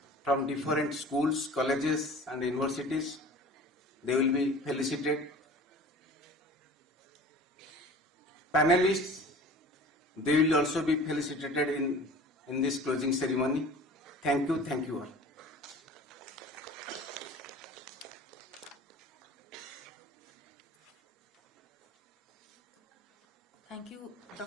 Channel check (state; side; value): normal; both; correlation 0.42